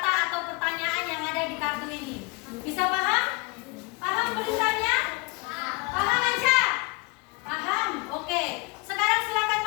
atau pertanyaan yang ada di kartu ini. Bisa paham? Paham tulisannya? Paham aja? Paham? Oke. Sekarang silakan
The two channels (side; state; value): right; quieter; 27.4 dB